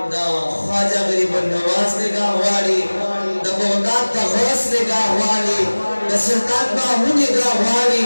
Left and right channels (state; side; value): inverted; both; correlation -1.00